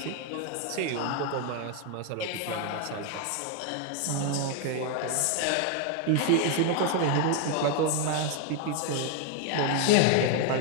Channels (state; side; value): different; both; correlation 0.01